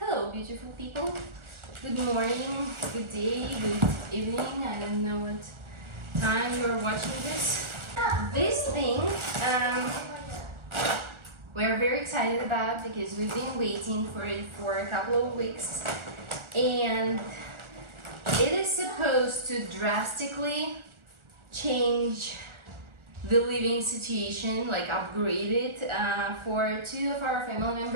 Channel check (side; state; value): left; late; 1.4 ms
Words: beautiful people. Good morning, good day, good evening. I don't know what time you're watching this. This thing we're very excited about because we've been waiting for it for a couple of weeks, and it is supposed to drastically change the living situation, like upgrade it for 2 of our family